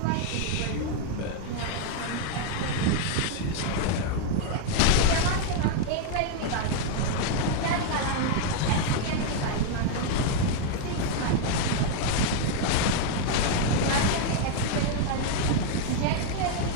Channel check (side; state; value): both; different; correlation 0.00